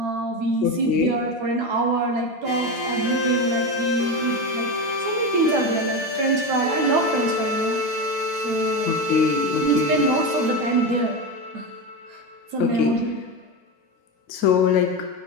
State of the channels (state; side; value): late; left; 11 ms